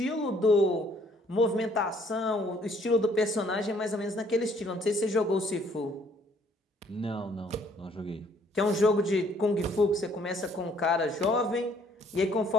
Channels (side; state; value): both; normal; correlation 0.63